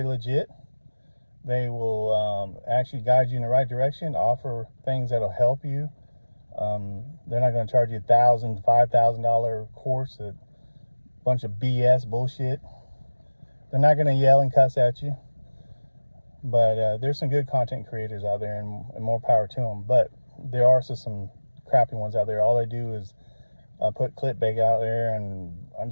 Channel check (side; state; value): both; inverted; correlation -1.00